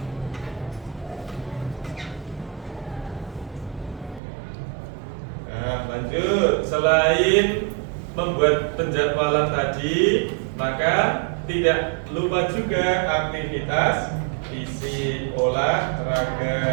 Nah, lanjut. Selain membuat penjadwalan tadi, maka tidak lupa juga aktivitas fisik,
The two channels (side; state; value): left; drops out; at 4.2 s